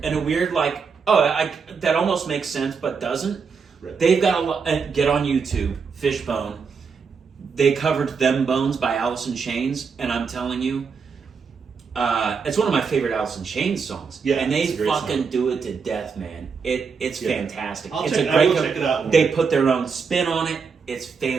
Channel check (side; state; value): left; quieter; 5.6 dB